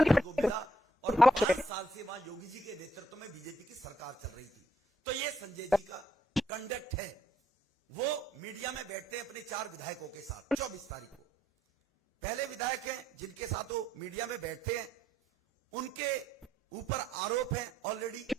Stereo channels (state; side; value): normal; both; correlation 0.71